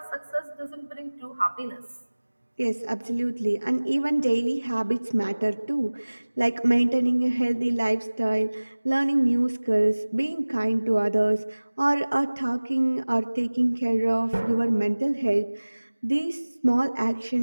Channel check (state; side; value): inverted; both; correlation -1.00